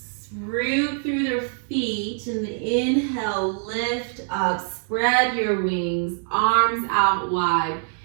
Root through their feet. And inhale, lift up. Spread your wings. Arms out wide.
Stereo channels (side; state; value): left; silent; 59 dB below the other